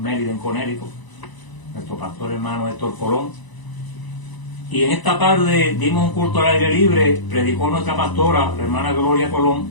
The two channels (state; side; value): late; right; 1.0 ms